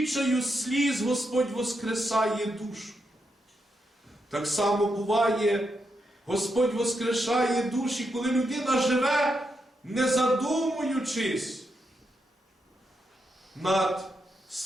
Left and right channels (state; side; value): normal; both; correlation 0.83